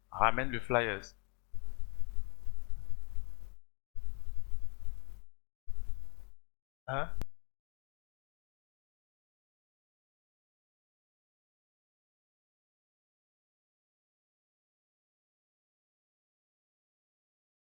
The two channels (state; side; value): quieter; right; 34.8 dB